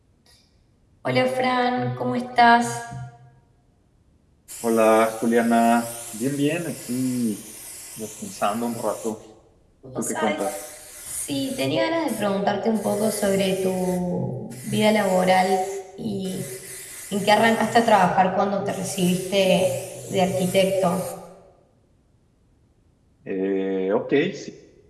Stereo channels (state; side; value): identical; both; correlation 1.00